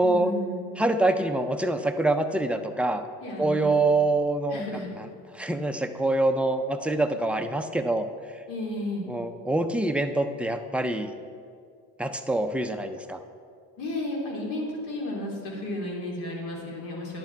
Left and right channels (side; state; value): both; normal; correlation 0.72